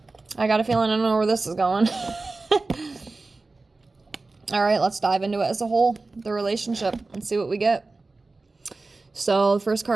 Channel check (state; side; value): quieter; left; 3.5 dB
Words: I got a feeling I don't know where this is going. All right, let's dive into it as a whole, the relationship, and see what we get. So the first